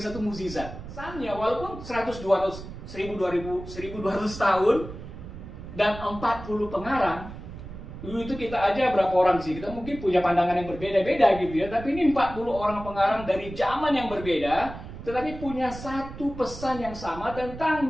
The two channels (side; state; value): right; noise; rumble, 12 dB below the sound